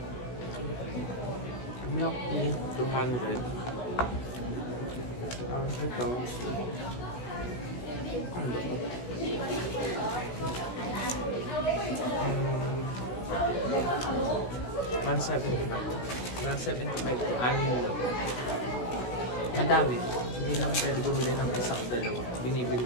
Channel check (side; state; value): right; late; 16 ms